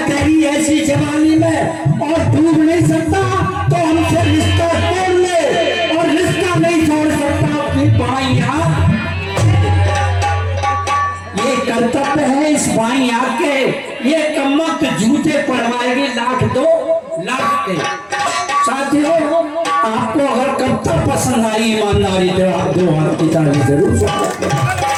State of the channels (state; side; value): identical; both; correlation 1.00